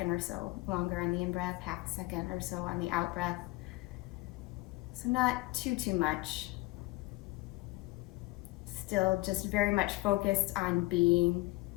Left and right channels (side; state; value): right; quieter; 21.1 dB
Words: or so longer on the in-breath, half a second or so on the out-breath. So not too much. Still just very much focused on being,